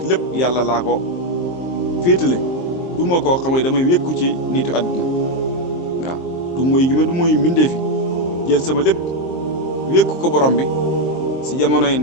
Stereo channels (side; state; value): right; late; 23 ms